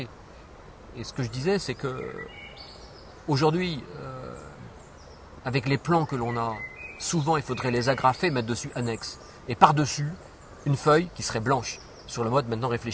Et ce que je disais, c'est que aujourd'hui, avec les plans que l'on a, souvent il faudrait les agrafer, mettre dessus annexe. Et par-dessus, une feuille qui serait blanche, sur le mode maintenant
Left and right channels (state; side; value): identical; both; correlation 1.00